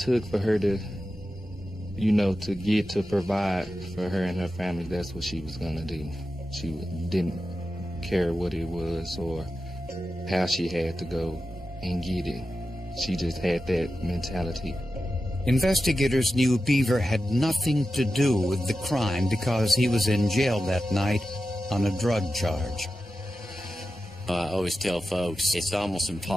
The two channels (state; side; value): normal; both; correlation 0.92